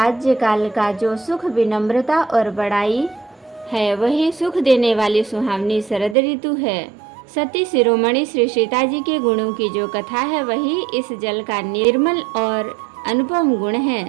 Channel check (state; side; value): drops out; left; at 6.2 s